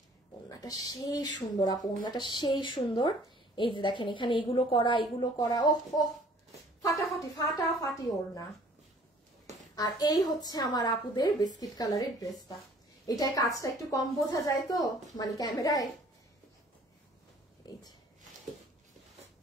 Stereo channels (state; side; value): normal; both; correlation 0.55